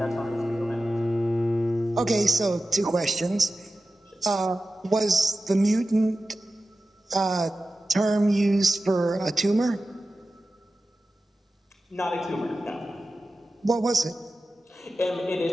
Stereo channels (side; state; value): both; normal; correlation 0.94